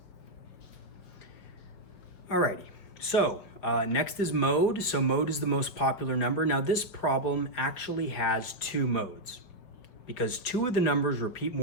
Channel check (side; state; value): right; late; 5.3 ms